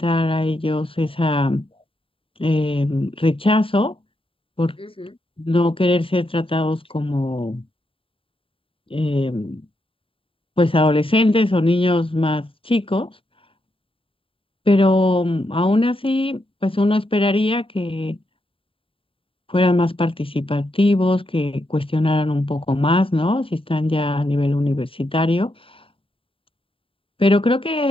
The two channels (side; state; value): right; late; 0.26 ms